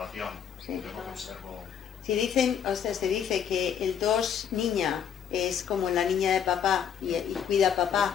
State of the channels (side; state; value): right; quieter; 8.3 dB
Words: Sí. Yo lo que observo. Si dicen, o sea, se dice que el 2 niña es como la niña de papá y cuida a